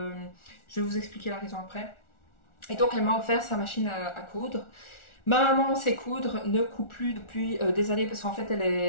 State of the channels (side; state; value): right; late; 1.4 ms